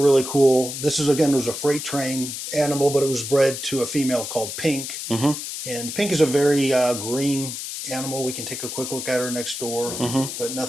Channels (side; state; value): left; noise; hiss, 7 dB below the sound